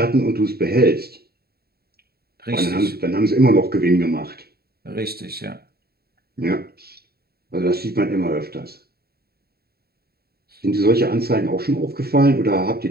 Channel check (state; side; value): late; left; 0.45 ms